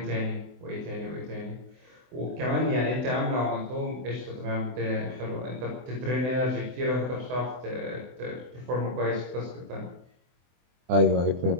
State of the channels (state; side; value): late; left; 24 ms